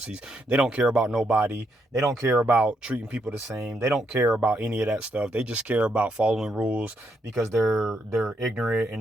They don't care about nobody. They don't care about treating people the same. They don't care about any of that stuff. They just care about following rules because they're ignorant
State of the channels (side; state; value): both; normal; correlation 0.78